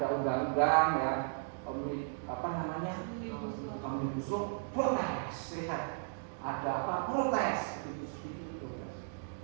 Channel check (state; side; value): silent; left; digital silence